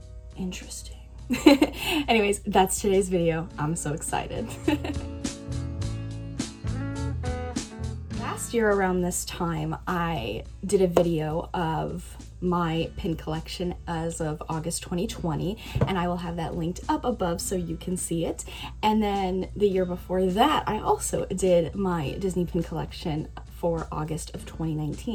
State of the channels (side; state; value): both; identical; correlation 1.00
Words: Interesting. Anyways, that's today's video. I'm so excited. Last year around this time, I did a video of my pin collection as of August 2020, and I will have that linked up above so you can see it. And then the year before that, I also did my Disney pin collection for August of